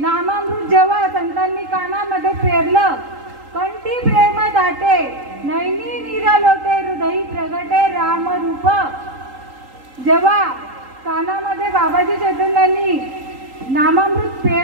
जेव्हा संतांनी कानामध्ये पेरलं कंठी प्रेम दाटे नैनी नीर लोटे हृदयी प्रगटे राम रूप. जेव्हा कानामध्ये बाबाजी चैतन्यांनी नामामृत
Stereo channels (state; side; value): late; left; 3.8 ms